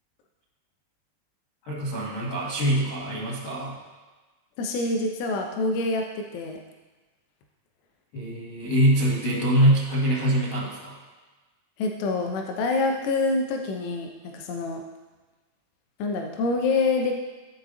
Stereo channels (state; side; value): late; right; 21 ms